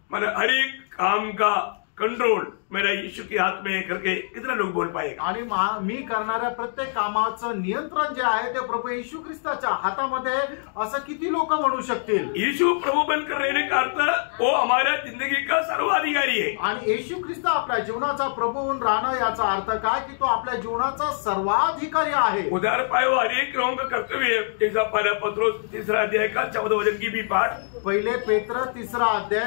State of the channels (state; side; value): silent; right; digital silence